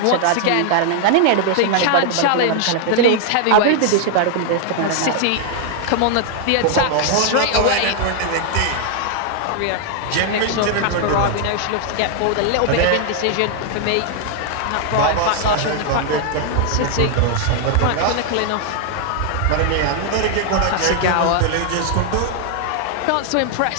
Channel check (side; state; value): both; different; correlation 0.00